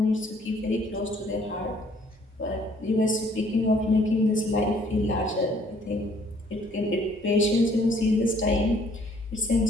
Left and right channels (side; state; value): both; normal; correlation 0.62